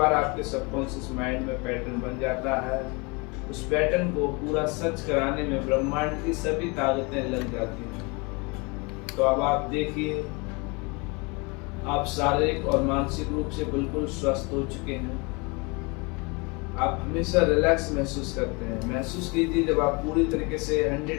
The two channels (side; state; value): right; quieter; 28.9 dB